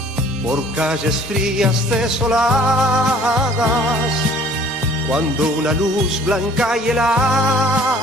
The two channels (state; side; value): normal; both; correlation 0.53